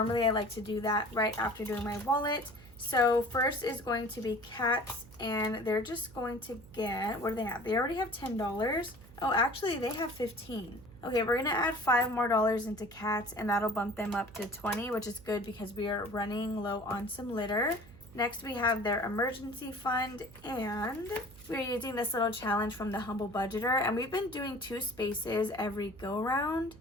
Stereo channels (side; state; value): right; noise; hum, 21 dB below the sound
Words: I like to do that right after doing my wallet. So first is going to be cats, and they're just going to get, what do they have? They already have $10. Oh, actually they have 15. Okay, we're gonna add $5 more into cats, and that'll bump them up to 20, which is good because we are running low on some litter. Next, we have their emergency fund, and we're using this little challenge from the Humble Budgeter, and we've been doing 2 spaces every go round.